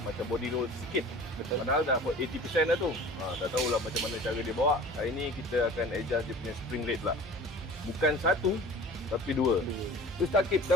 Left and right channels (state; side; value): normal; both; correlation 0.42